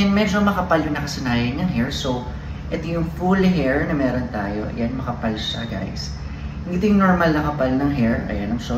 medyo makapal yung nakasanayan niyang hair. So, ito yung full hair na meron tayo. Ayan, makapal siya, guys. Hindi ito yung normal na kapal ng hair. Ayan, I'm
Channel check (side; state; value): both; identical; correlation 1.00